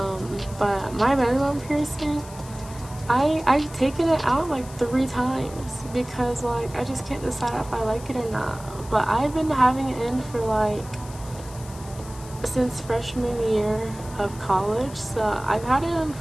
my belly button piercing, I've taken it out like 3 times because like I just can't decide if I like it or not. But I've been having it in for like since freshman year of college, so I've had it in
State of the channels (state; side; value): noise; left; hiss, 18 dB below the sound